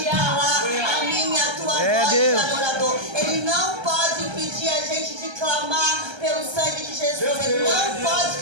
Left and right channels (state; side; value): late; left; 1.3 ms